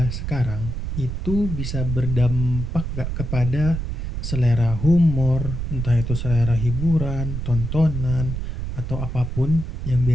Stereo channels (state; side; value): noise; right; rumble, 4 dB below the sound